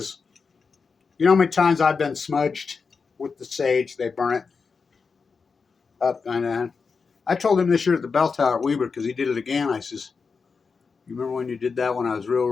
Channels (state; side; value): quieter; right; 5.1 dB